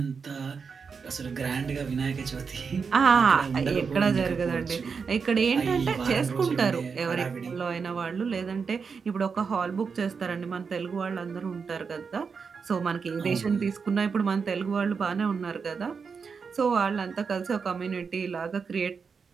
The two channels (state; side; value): quieter; left; 5.6 dB